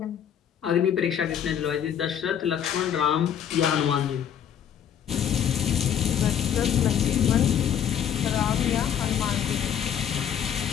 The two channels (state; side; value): quieter; right; 9.1 dB